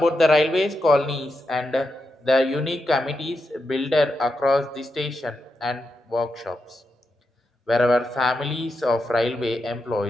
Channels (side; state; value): both; normal; correlation 0.86